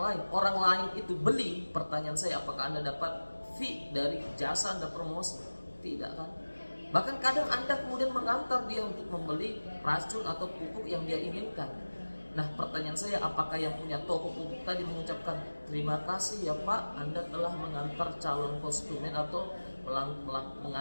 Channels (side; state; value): both; inverted; correlation -1.00